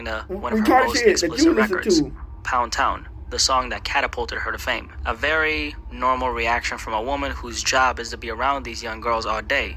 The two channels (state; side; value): identical; both; correlation 1.00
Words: to one of her most explicit records, Pound Town, the song that catapulted her to fame. A very normal reaction from a woman whose job is to be around these young girls all